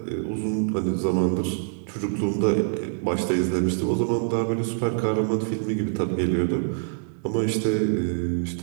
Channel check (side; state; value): left; silent; digital silence